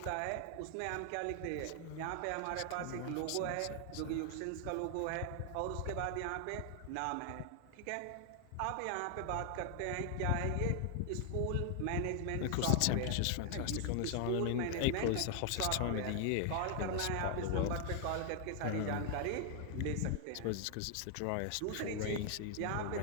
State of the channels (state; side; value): different; both; correlation 0.00